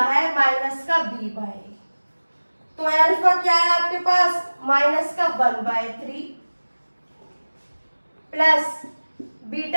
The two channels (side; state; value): both; inverted; correlation -1.00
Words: माइनस का b/a। तो अल्फा क्या है आपके पास माइनस का 1/3 प्लस